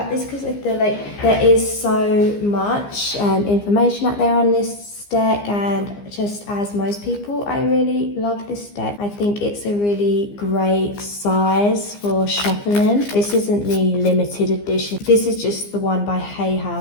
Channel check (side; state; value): right; late; 15 ms